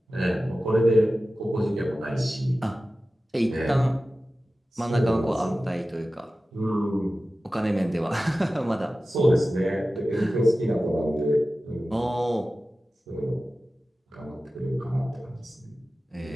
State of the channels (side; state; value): both; normal; correlation 0.95